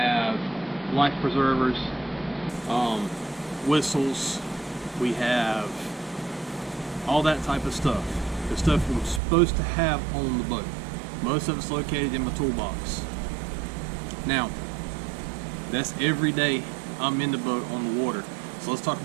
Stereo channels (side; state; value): left; drops out; at 9.2 s